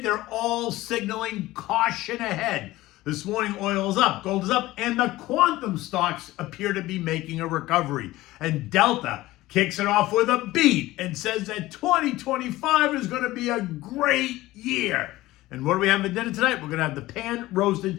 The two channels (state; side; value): quieter; right; 17.6 dB